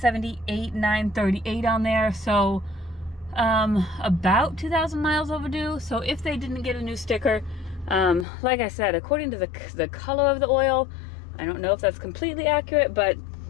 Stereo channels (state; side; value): drops out; right; at 8.2 s